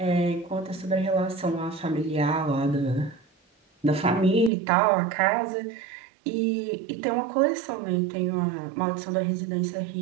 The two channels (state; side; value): drops out; left; at 4.5 s